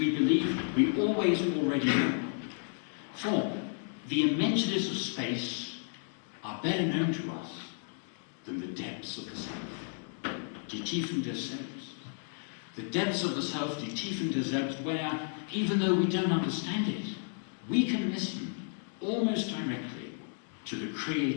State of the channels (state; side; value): silent; right; 56 dB below the other